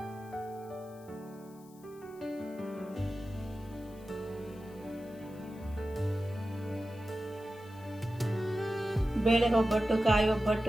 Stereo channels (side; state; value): left; noise; hiss, 26 dB below the sound